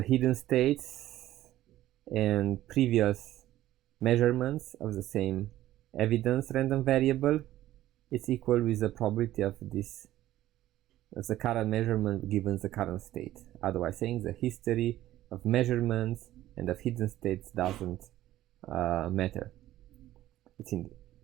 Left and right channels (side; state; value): left; quieter; 14.1 dB